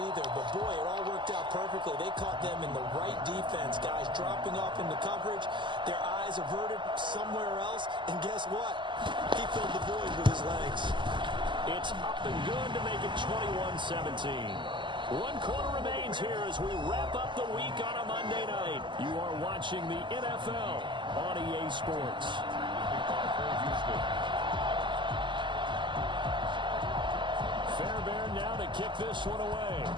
either. But, boy, it all worked out perfectly. They caught them in the right defense. Guys dropping off into coverage, their eyes averted somewhere else. And guess what? He filled the void with his legs. It's up and good to make it 21-17. 1 quarter remains here as we wrap up the week on a Monday night. You are watching the NFL on EA Sports. Fairbairn now to kick this one away.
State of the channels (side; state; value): left; late; 0.23 ms